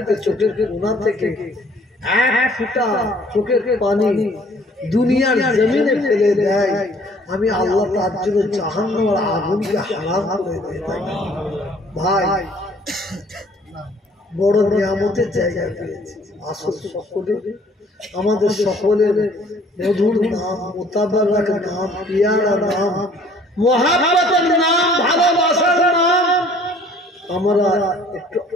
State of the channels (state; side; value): normal; both; correlation 0.57